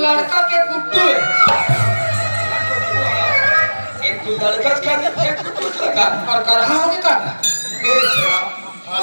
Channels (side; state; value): both; inverted; correlation -1.00